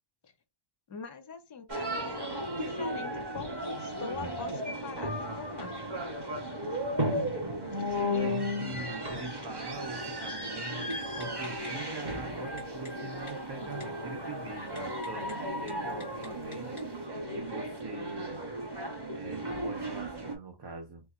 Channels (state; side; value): late; left; 1.1 ms